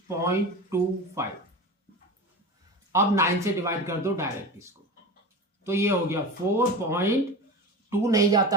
अब 9 से डिवाइड कर दो डायरेक्ट इसको, तो ये हो गया 4.2 नहीं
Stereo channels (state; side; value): normal; both; correlation 0.28